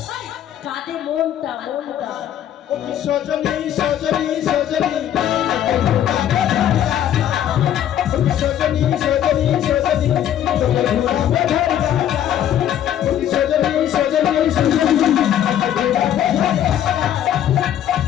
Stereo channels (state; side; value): quieter; right; 10.7 dB